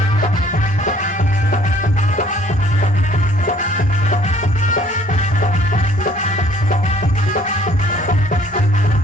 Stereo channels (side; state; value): both; normal; correlation 0.59